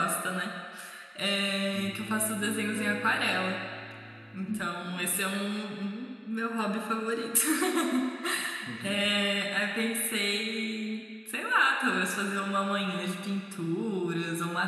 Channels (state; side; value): identical; both; correlation 1.00